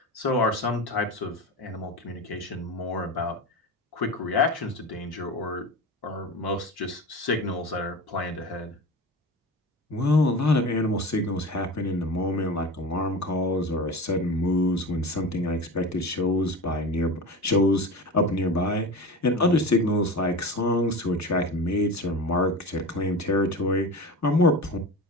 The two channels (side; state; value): both; normal; correlation 0.30